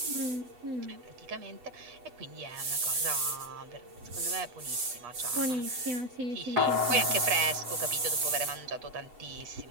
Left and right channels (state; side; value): late; left; 8.1 ms